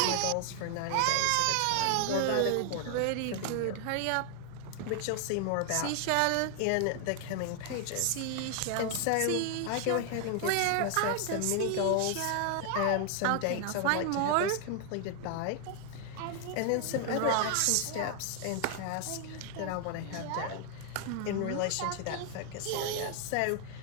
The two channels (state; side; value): different; both; correlation 0.00